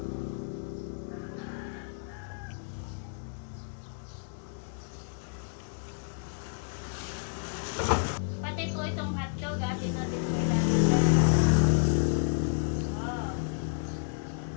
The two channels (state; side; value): silent; right; digital silence